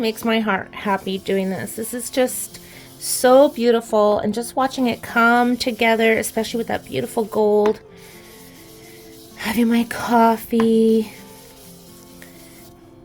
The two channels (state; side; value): identical; both; correlation 1.00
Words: my heart happy doing this. This is just so beautiful, and just watching it come together, especially with that beautiful gold. Having my coffee.